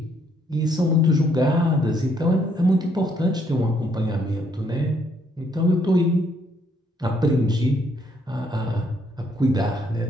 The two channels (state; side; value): normal; both; correlation 0.70